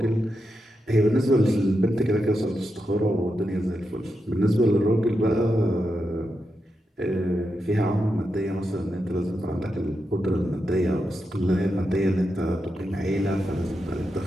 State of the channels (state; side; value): normal; both; correlation 0.86